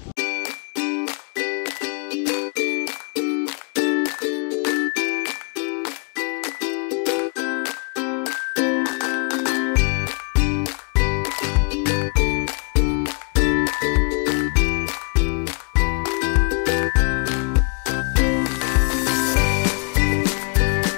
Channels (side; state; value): right; quieter; 36.3 dB